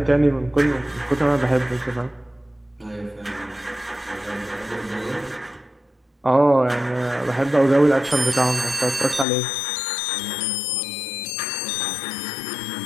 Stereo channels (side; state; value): right; drops out; at 9.2 s